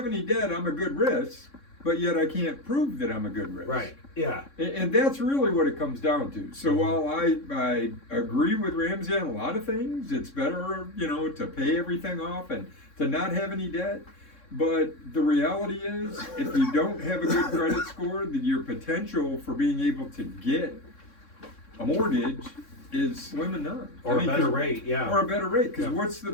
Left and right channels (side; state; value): right; late; 3.6 ms